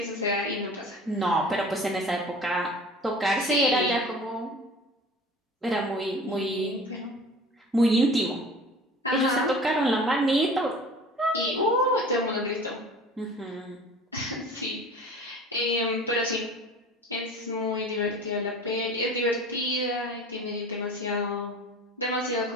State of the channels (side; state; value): both; normal; correlation 0.42